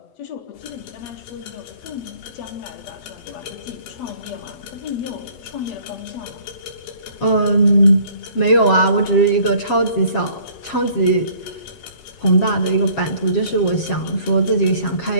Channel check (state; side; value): late; right; 7.3 ms